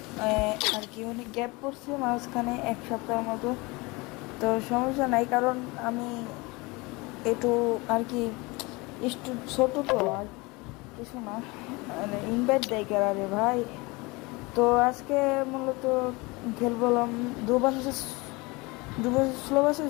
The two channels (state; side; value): quieter; right; 24.8 dB